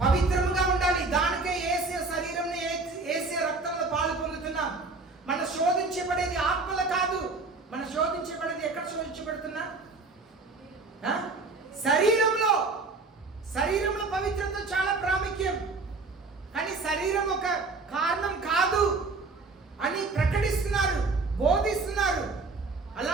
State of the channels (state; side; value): quieter; left; 3.8 dB